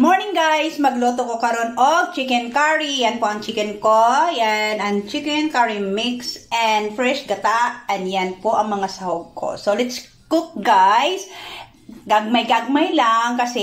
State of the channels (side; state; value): both; identical; correlation 1.00